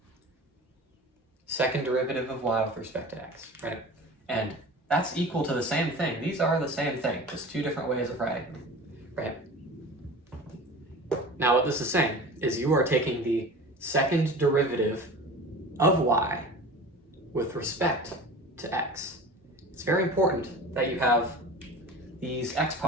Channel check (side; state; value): both; normal; correlation 0.37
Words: Second derivative of y with respect to x, right? And that's equal to the same thing. These are the same thing, just two different ways of writing them, right? Now what this is saying is you are taking the second derivative of y with respect to x. It's very important that you have these